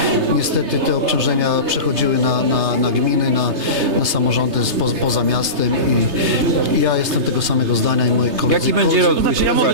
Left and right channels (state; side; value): late; left; 3.3 ms